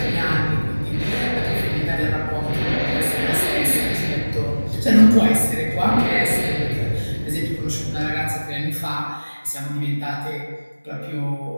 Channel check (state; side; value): inverted; both; correlation -1.00